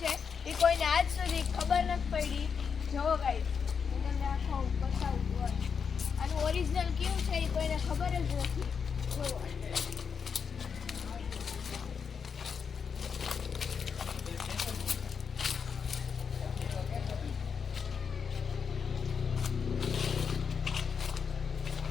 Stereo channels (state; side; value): quieter; right; 6.3 dB